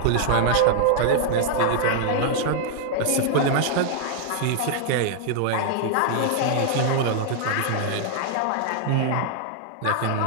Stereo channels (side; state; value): both; different; correlation 0.00